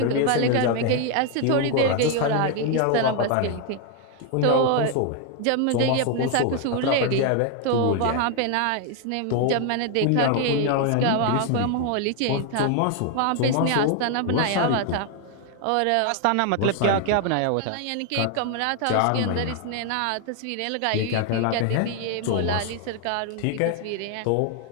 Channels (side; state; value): both; different; correlation 0.00